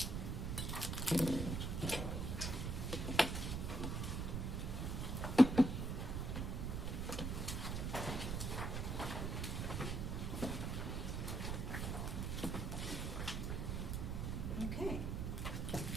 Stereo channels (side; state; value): right; noise; rumble, 1 dB below the sound